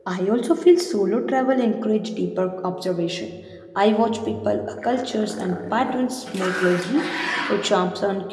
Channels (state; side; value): identical; both; correlation 1.00